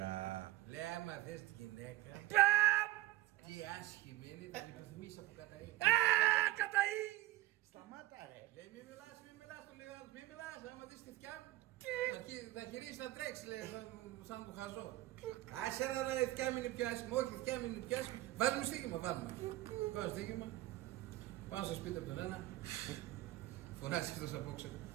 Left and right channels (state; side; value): quieter; left; 16.7 dB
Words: Λέει άμα θες τη γυναίκα, τι άσχημη είναι, την επιθυμείς από καταή. Καταή. Σταμάτα ρε. Λέει μη μιλάς, του λέει ο άλλος, μη μιλάς, άμα δεις τη θκιά μου. Θα γυρίσει να τρέξει, λέει, σαν του χαζό. Άσε να η θκιά μου είναι πιο άσχημη, όχι η θκιά μου είναι πιο άσχημη. Βάζουμε στοίχημα, βάζουμε. Βάζω στοίχημα, πάω στο σπίτι από τον ένα, φωνάζει εκτός απόξε.